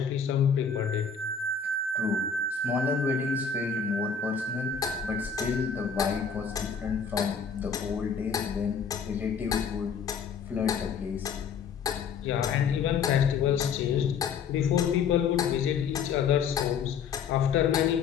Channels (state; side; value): quieter; right; 6.3 dB